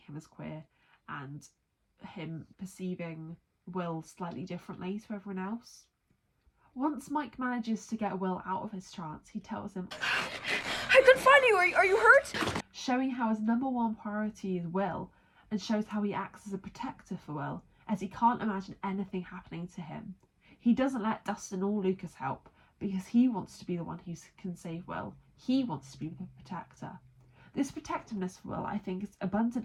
as queer and him perceiving Will slightly differently to everyone else. Once Mike manages to get Will out of his trance, he tells him, I couldn't find you. Are you hurt? showing how his number one priority is Will, and shows how he acts as a protector for Will, as he can't imagine anything happening to him. He doesn't let Dustin or Lucas help, because he wants to be the one who can save Will. He wants to be the protector. This protectiveness for Will, I think, is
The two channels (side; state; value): both; identical; correlation 1.00